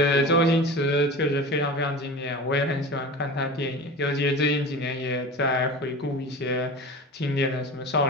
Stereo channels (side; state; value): both; normal; correlation 0.33